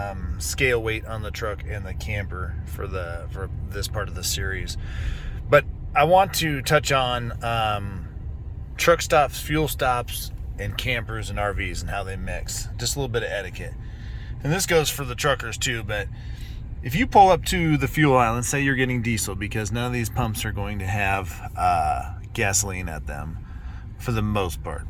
scale weight on the truck and the camper for this part of the series. But I want to touch on truck stops, fuel stops, and campers and RVs and how they mix. Just a little bit of etiquette. And this goes for the truckers too, but if you pull up to the fuel island, say you're getting diesel, because none of these pumps are going to have gasoline at them for the most part.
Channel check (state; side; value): identical; both; correlation 1.00